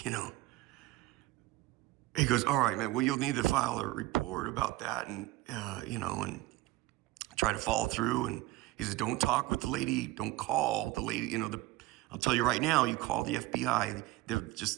he goes, all right, man, well, you'll need to file a report about that and try to follow through. And he says, don't talk with the lady. Don't call the lady. I'll tell you right now, you call the FBI, they're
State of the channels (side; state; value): left; quieter; 17.3 dB